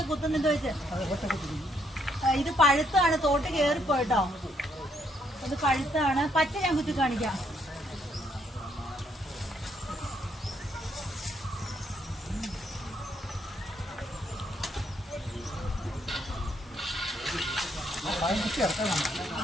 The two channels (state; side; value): normal; both; correlation 0.73